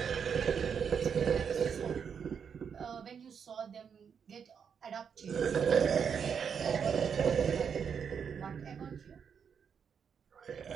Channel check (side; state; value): left; quieter; 7.0 dB